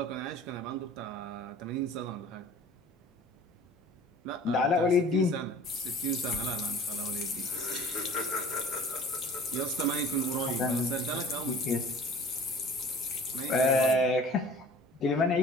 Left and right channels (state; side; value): normal; both; correlation 0.46